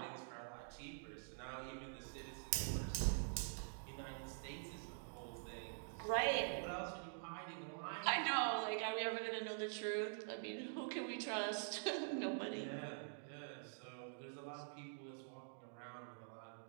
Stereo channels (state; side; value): silent; left; digital silence